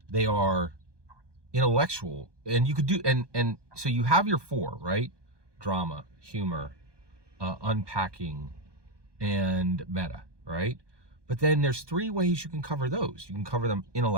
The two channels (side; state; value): left; late; 1.2 ms